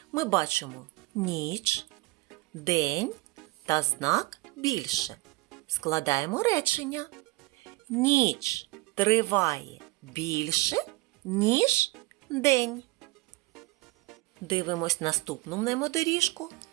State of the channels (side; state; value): left; quieter; 22.0 dB